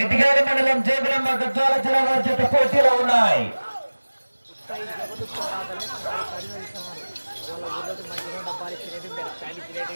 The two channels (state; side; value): inverted; both; correlation -1.00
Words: ఇటుకాల మండలం జోగులాంబ గద్వాల జిల్లా వారి చేత పోటీలో ఉన్నాయి. డబ్బాలు ఇచ్చినవి ప్యాన్